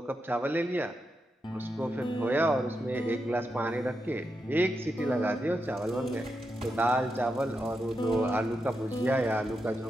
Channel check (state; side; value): normal; both; correlation 0.86